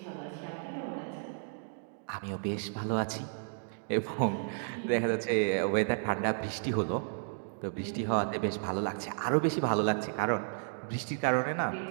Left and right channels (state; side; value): silent; left; digital silence